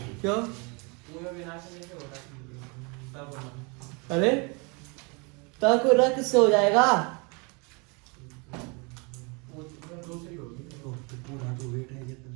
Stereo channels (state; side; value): quieter; left; 31.0 dB